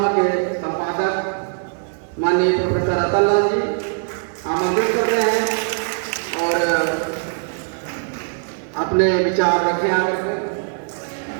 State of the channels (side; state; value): left; silent; 65 dB below the other